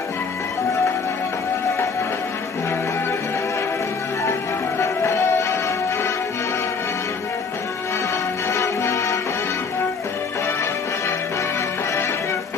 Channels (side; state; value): right; quieter; 5.1 dB